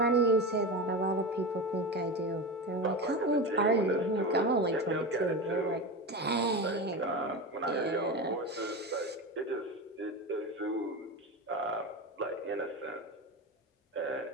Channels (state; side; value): normal; both; correlation 0.23